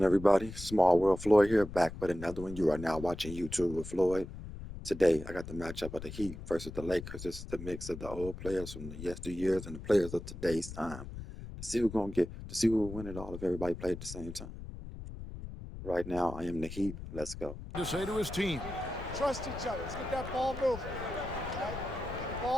everybody? Small World Floyd here, back with another one. You are now watching YouTube with Floyd. Today, I got the matchup of the Heat versus the Lakers. This is the mix of the old players from the yesteryears and the players of today's time. To see who's gonna who will win it all if everybody played at the same time. Right now, I am the Heat. Let's go. To say to his team, trust each other. Let's get that ball moving. Right?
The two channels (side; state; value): left; noise; rumble, 11 dB below the sound